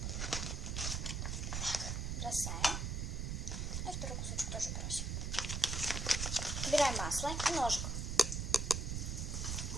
Так, бросаем. И второй кусочек тоже бросим. Убираем масло и ножик.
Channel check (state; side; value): noise; right; rumble, 1 dB below the sound